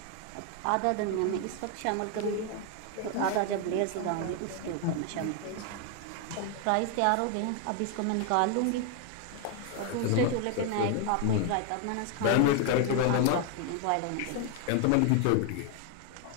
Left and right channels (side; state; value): both; different; correlation 0.00